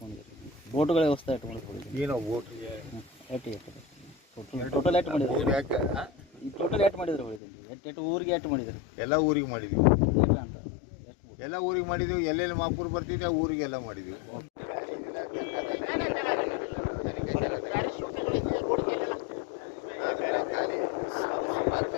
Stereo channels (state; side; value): drops out; right; at 7.4 s